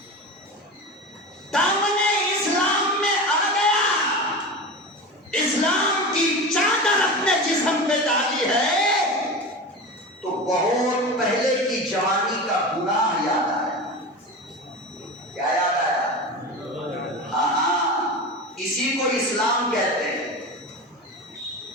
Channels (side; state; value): both; normal; correlation 0.28